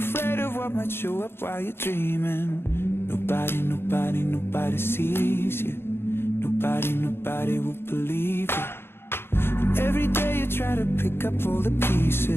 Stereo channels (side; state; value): right; late; 0.11 ms